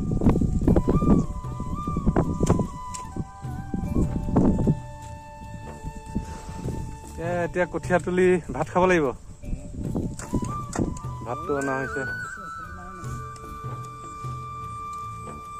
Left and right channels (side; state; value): both; identical; correlation 1.00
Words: এতিয়া কঠীয়া তুলি ভাত খাব লাগিব ভাতটো অনা হৈছে